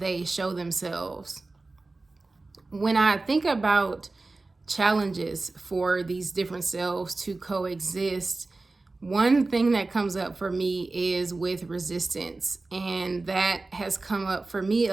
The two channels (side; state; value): left; quieter; 3.4 dB